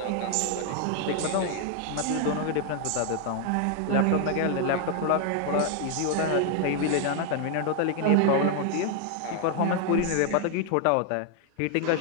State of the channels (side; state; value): both; different; correlation 0.00